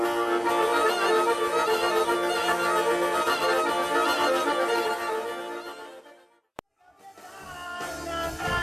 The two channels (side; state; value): both; identical; correlation 1.00